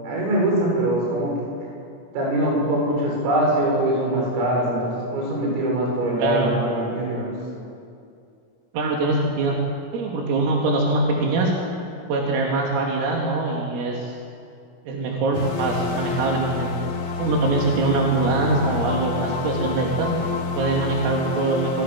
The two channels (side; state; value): left; late; 17 ms